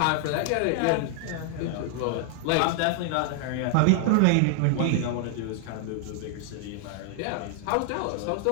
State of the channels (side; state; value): both; different; correlation 0.00